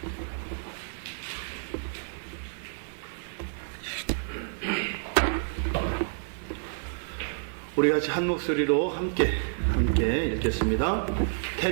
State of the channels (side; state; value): left; silent; digital silence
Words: 우리 같이 한 목소리로 함께 읽겠습니다.